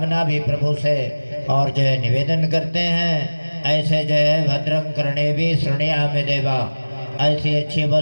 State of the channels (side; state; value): both; inverted; correlation -1.00